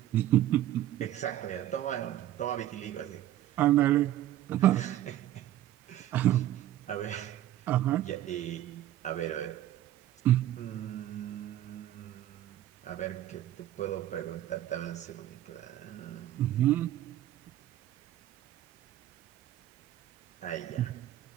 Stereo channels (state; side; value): quieter; left; 13.0 dB